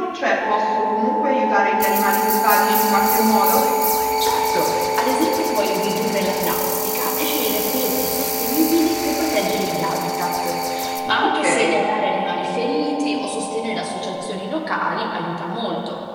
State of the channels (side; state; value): both; identical; correlation 1.00